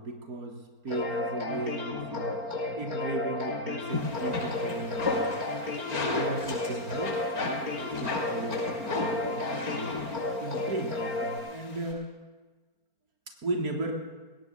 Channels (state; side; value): late; left; 4.4 ms